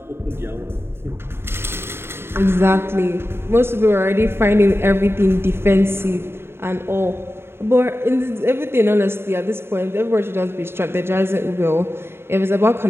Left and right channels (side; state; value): left; late; 0.11 ms